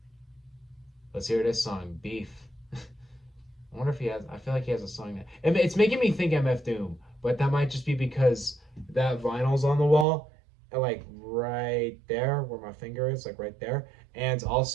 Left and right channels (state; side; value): drops out; left; at 10.1 s